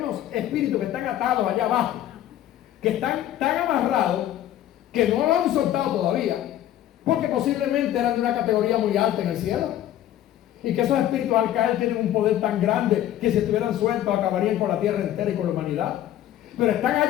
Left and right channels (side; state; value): right; quieter; 12.4 dB